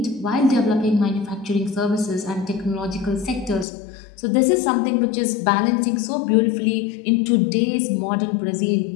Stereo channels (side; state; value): right; drops out; at 3.7 s